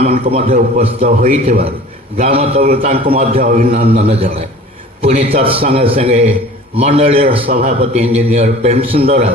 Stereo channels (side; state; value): both; normal; correlation 0.44